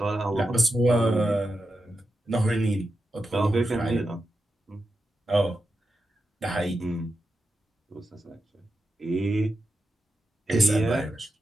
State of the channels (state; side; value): normal; both; correlation 0.89